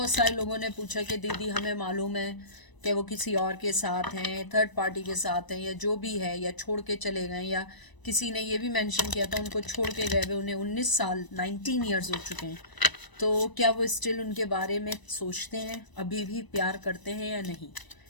सारे लोगों ने पूछा कि दीदी हमें मालूम है कि वो किसी और के साथ हैं, थर्ड पार्टी के साथ हैं या जो भी है, या छोड़ के चले गए, या किसी ने ये भी मेंशन किया था उनको छोड़ के गए हुए उन्हें 19 साल 19 ईयर्स हो चुके हैं, तो क्या वो स्टिल उनके बारे में सोचते हैं, अभी भी प्यार करते हैं या नहीं।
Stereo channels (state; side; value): late; right; 1.0 ms